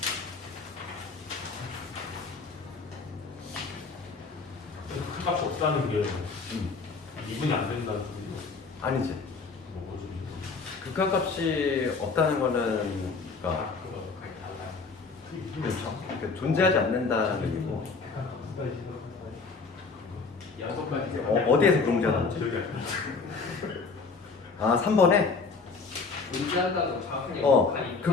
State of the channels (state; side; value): quieter; right; 4.5 dB